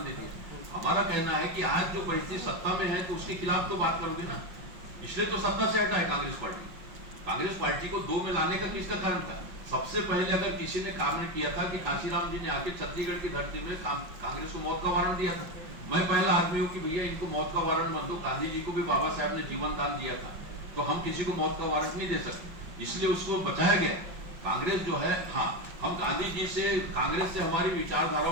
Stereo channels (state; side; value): late; left; 5.6 ms